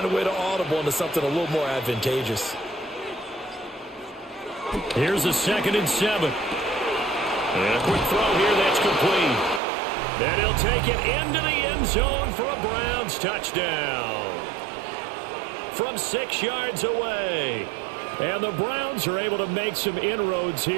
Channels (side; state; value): left; drops out; at 9.6 s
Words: a way to audible into something a little more advantageous. Here's a 2nd and 7. And a quick throw here that's complete. And he'll take it into the end zone for a Browns touchdown. From 6 yards away. And the Browns are able to make some inroads